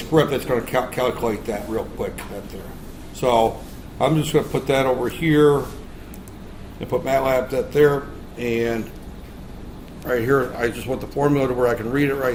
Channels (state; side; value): identical; both; correlation 1.00